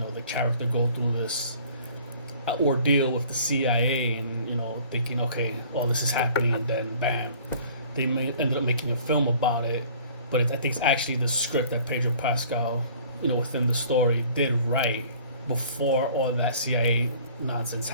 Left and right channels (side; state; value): both; inverted; correlation -0.51